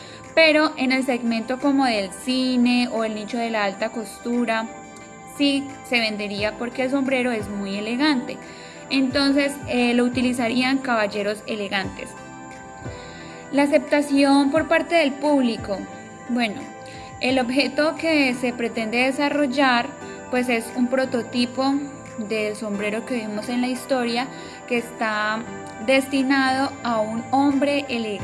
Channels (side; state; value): both; identical; correlation 1.00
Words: Pero en el segmento como del cine o el nicho de la alta costura, sí se vendería porque el sombrero es muy elegante. Entonces lo utilizarían caballeros elegantes. La aceptación por parte del público. Bueno, el objeto que se pretende desarrollar pues es un prototipo del sombrero que vimos en la historia, que está destinado a un hombre